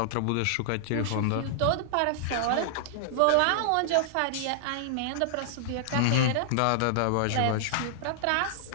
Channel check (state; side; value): different; both; correlation -0.01